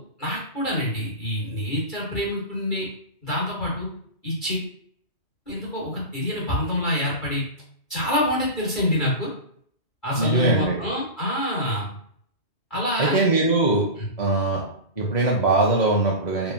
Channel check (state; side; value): late; right; 2.3 ms